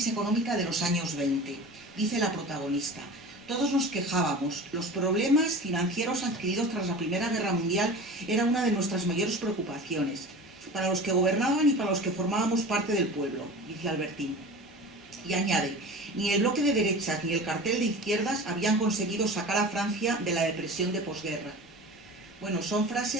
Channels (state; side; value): normal; both; correlation 0.35